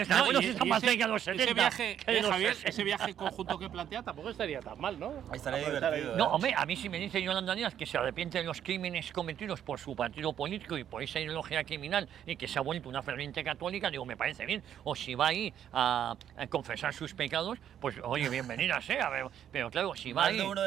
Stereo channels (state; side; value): quieter; left; 9.9 dB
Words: está bueno, si está más ese- cerca de los 70. Ese viaje, que de los Javier, 60. ese viaje conjunto que plantea tampoco estaría tan mal, ¿no? Estaría Aprovechar ahí. divertido, No, hombre, a mí si me dice Yolanda Díaz que se arrepiente de los crímenes cometidos por su partido político y por esa ideología criminal y que se ha vuelto una ferviente católica, digo, me parece bien. O si va ahí a confesar sus pecados, pues oye, bienvenida sea. Pero claro, si va Más ahí... de uno